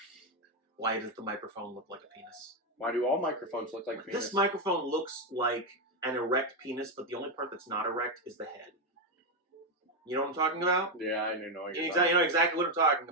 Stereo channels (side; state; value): both; normal; correlation 0.05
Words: Why does the microphone look like a penis? Why do all microphones look like penis? This microphone looks like an erect penis, but the only part that's not erect is the head. You know what I'm talking about? Yeah, I know what you're You talking know exactly what I'm talking